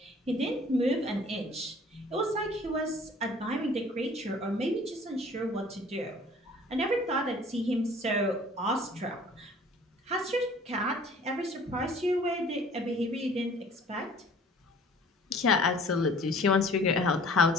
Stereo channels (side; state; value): both; normal; correlation 0.51